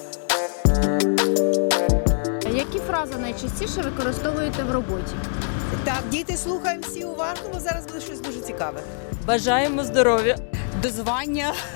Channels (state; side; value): silent; right; 63 dB below the other